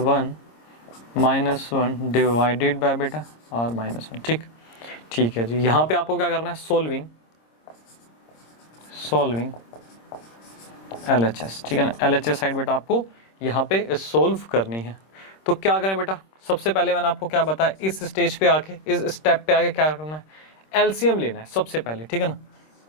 -1 divided by बेटा आर -1, ठीक है जी। यहाँ पे आपको क्या करना है, सॉल्विंग LHS, ठीक है ना। LHS साइड बेटा आपको यहाँ पे सोल्व करनी है। तो क्या करें बेटा, सबसे पहले मैंने आपको क्या बताया, इस स्टेज पे आके, इस स्टेप पे आके क्या करना है, एलसीएम लेना है सबसे पहले, ठीक है ना।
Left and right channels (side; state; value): right; late; 26 ms